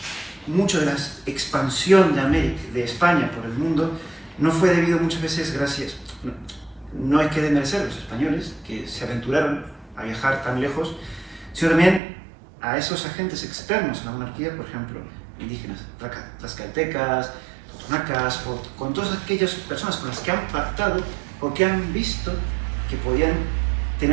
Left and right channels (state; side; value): drops out; left; at 12.0 s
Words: mucho de la expansión de América, de España por el mundo, no fue debido muchas veces gracias, no hay que desmerecer a los españoles que se aventuraron a viajar tan lejos, sino también a esos agentes externos a la monarquía, por ejemplo, indígenas, tlaxcaltecas, totonacas, con todas aquellas personas con las que han pactado o que han visto que podían